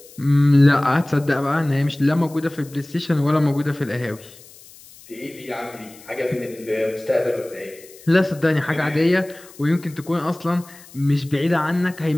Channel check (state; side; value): noise; left; hiss, 22 dB below the sound